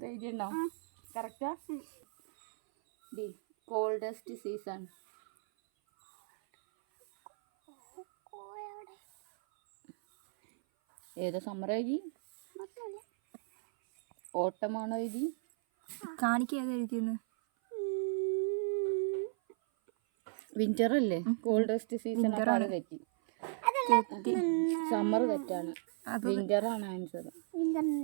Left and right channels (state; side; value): silent; left; 55 dB below the other